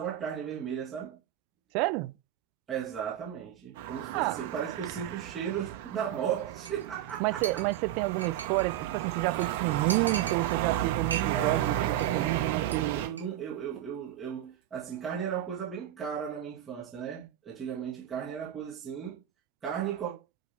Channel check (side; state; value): left; quieter; 12.4 dB